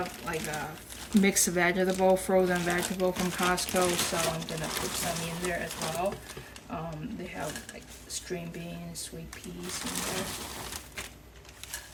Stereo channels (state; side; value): identical; both; correlation 1.00